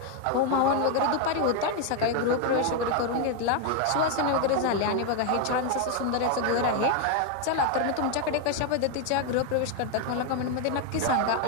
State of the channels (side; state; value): both; different; correlation 0.01